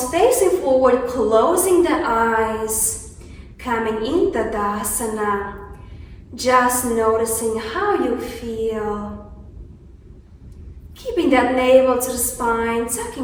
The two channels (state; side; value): identical; both; correlation 1.00